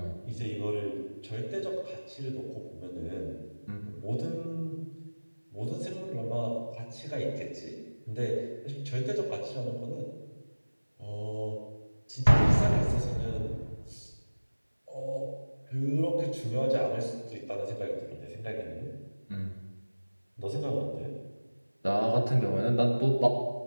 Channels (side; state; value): both; inverted; correlation -1.00